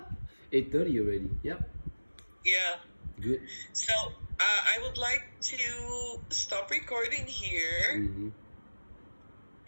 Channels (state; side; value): inverted; both; correlation -1.00